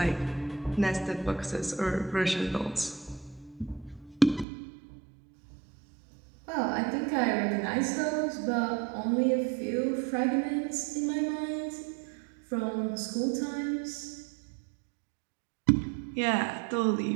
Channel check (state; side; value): drops out; left; at 4.5 s